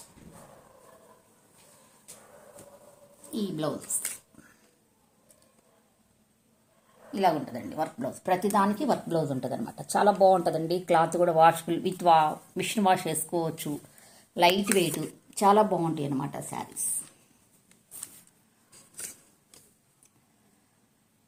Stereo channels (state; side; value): identical; both; correlation 1.00